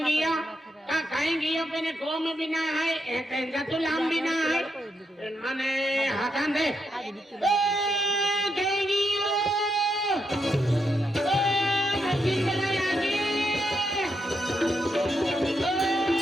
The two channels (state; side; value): normal; both; correlation 0.81